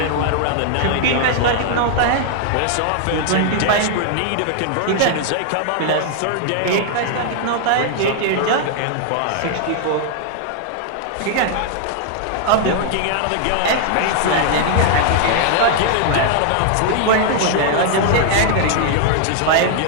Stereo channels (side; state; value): both; different; correlation 0.00